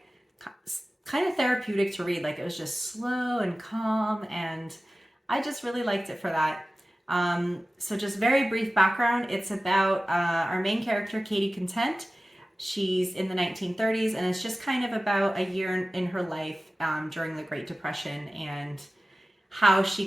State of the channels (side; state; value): both; normal; correlation 0.96